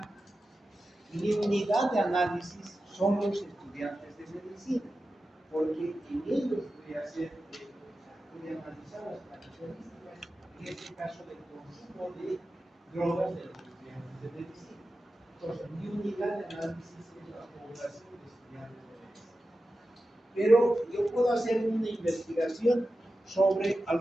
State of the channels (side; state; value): both; normal; correlation 0.93